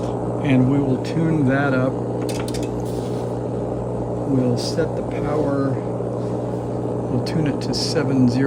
and we will tune that up. We'll set the power, we'll tune it to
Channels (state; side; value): identical; both; correlation 1.00